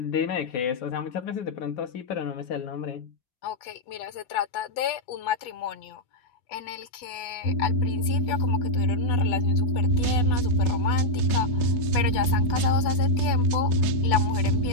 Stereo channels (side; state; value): right; late; 8.2 ms